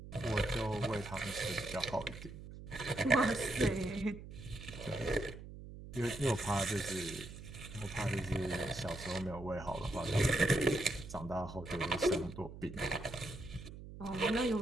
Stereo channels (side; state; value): right; noise; hum, 13 dB below the sound